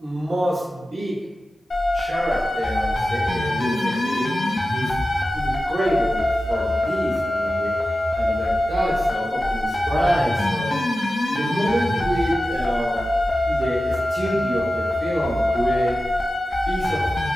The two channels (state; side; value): normal; both; correlation 0.94